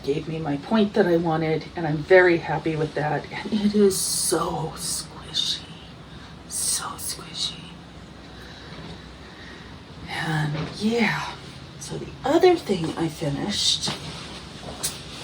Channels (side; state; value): both; identical; correlation 1.00